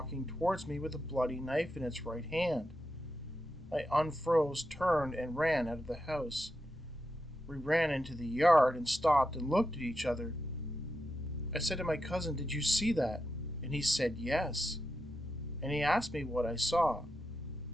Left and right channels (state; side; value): noise; left; rumble, 24 dB below the sound